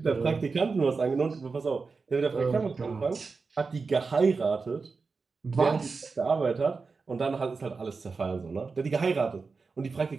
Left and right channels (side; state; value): left; quieter; 4.5 dB